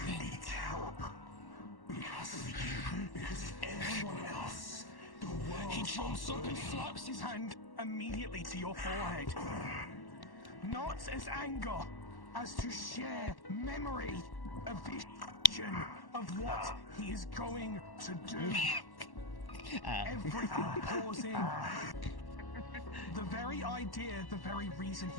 Needs help. Because of you, because of everyone else. The world. He jumps up and slaps his hand immediately to your forehead. Not as anger, as to share memory, a vision of what he is going to do. Everything pausing. The very idea, the very reason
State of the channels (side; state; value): right; late; 1.1 ms